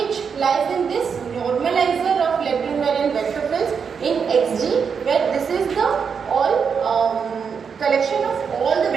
lies in this normalizer of left invariant vector fields in xg, where this is the collection of all the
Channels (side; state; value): left; quieter; 6.3 dB